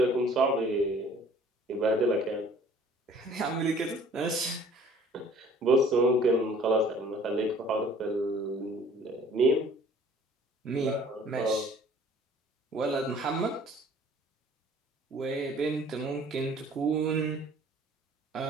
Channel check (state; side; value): normal; both; correlation 0.53